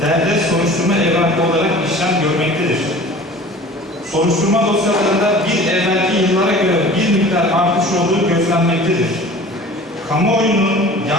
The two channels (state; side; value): normal; both; correlation 0.43